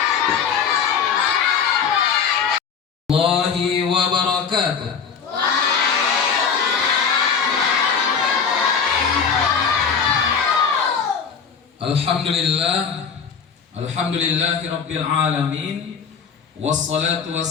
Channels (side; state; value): right; quieter; 6.4 dB